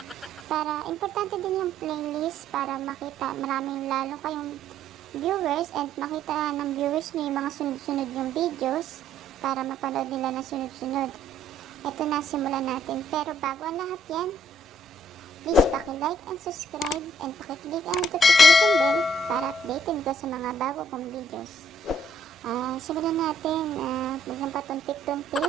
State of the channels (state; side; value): normal; both; correlation 0.65